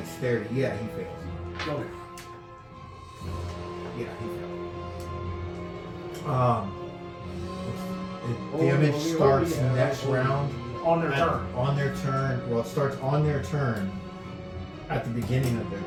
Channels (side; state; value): both; identical; correlation 1.00